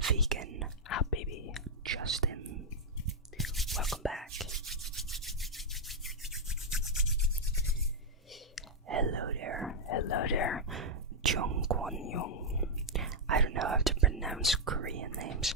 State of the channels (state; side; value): normal; both; correlation -0.03